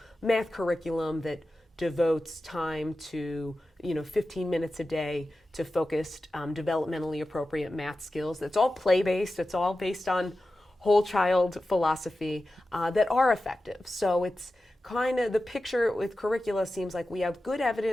math curriculum that devotes time to 15 minutes a day to focused developmentally appropriate math skills. That's all play-based. It's all based on whole child philosophy that are effective. So it's kind of the picture with curricula seems like we have good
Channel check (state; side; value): normal; both; correlation 0.93